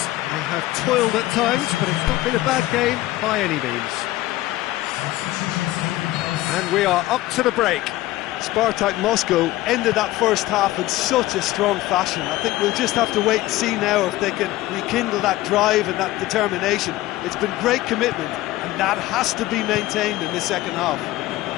They have toiled at times, but it's not been a bad game by any means. And we are up to the break. Spartak Moscow ended that first half in such a strong fashion. I think we'll just have to wait and see now if they can rekindle that drive and that determination. It's been great commitment, and that has to be maintained in the second half.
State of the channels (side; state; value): right; quieter; 16.8 dB